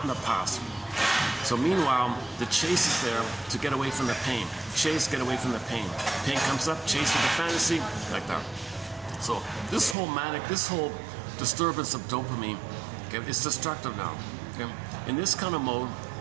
in the past. So meanwhile, the chase is there to get away from the pain. Chase, get away from the pain. Pain comes up, chase with the fantasy, like that. So this whole disturbance of dopamine, okay, is destructive now. Okay? In this kind of mode,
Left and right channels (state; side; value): drops out; left; at 10.0 s